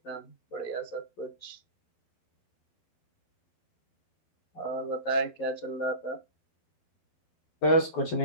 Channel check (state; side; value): late; right; 12 ms